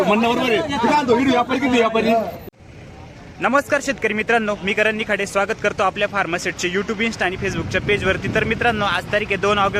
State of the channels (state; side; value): identical; both; correlation 1.00